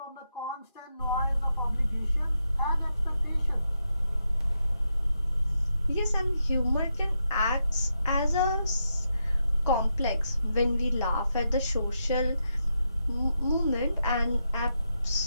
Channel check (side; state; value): both; inverted; correlation -0.83